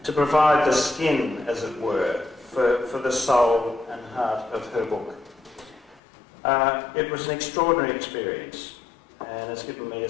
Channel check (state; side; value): drops out; right; at 6.0 s